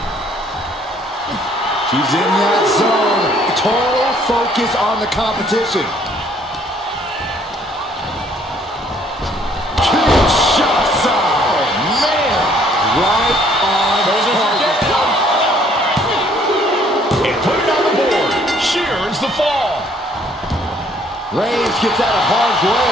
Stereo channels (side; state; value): both; normal; correlation 0.62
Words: She's in that zone. Total focus on the competition. Kinshasa! Oh, man. Right on target. Put it on the board. She earns the fall. Reigns gets out of harm's way.